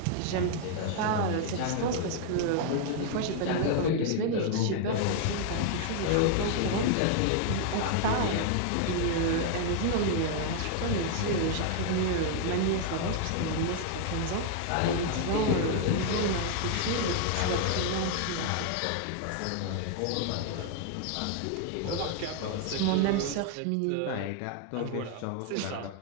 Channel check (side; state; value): both; different; correlation 0.00